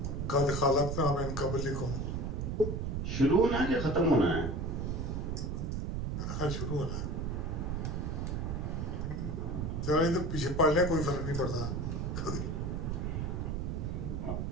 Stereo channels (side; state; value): right; noise; rumble, 2 dB below the sound